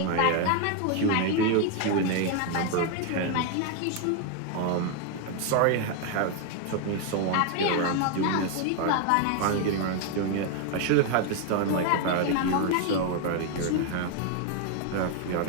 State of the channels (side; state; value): both; different; correlation 0.01